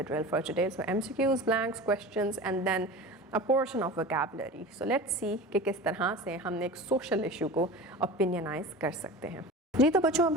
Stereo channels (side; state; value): both; normal; correlation 0.33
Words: drill for today. So MCQs, blanks, questions and then a portion of vocabulary. So let's see कि किस तरह से हम एक social issue को opinionize कर सकते हैं। जी तो बच्चों, अब